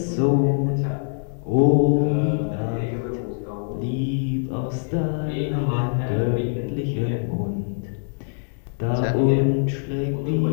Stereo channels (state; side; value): silent; right; 63 dB below the other